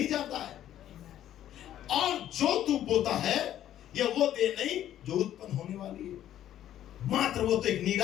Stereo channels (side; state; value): right; quieter; 11.8 dB